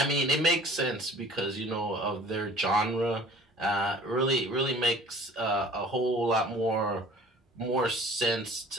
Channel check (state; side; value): normal; both; correlation 0.49